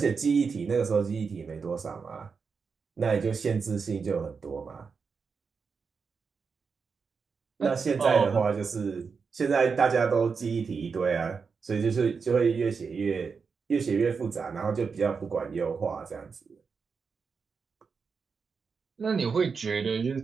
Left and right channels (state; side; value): quieter; left; 5.4 dB